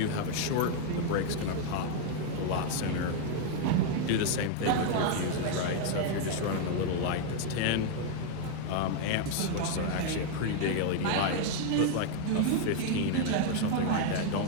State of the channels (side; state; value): both; different; correlation 0.00